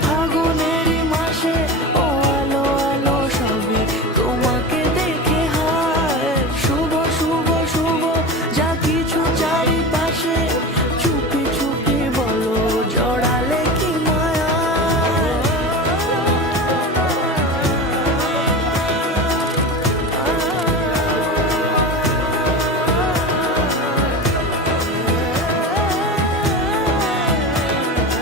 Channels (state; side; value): normal; both; correlation 0.27